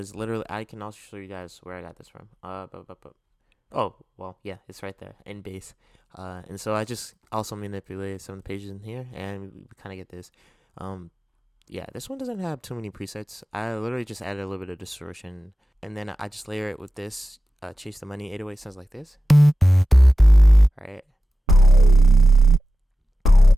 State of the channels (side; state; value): both; normal; correlation 0.93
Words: literally, I can also show you guys where I got this from. Oh, well, yeah, it's right there in base. And so I just also manipulated some of the pages in here, and we kind of get this. Yeah, this one doesn't have too many presets. I literally just added a little bit of distortion, and then I just layer it with this. Chase the Money 808 sounds like this, right?